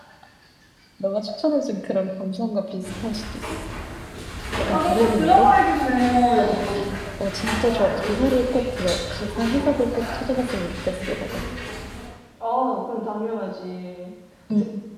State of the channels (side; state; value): both; identical; correlation 1.00